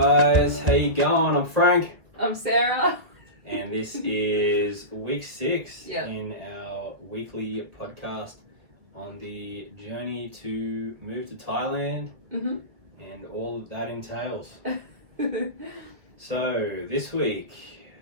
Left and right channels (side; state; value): left; late; 1.8 ms